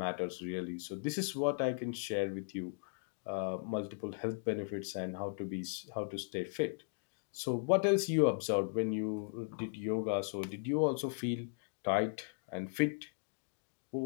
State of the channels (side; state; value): right; silent; digital silence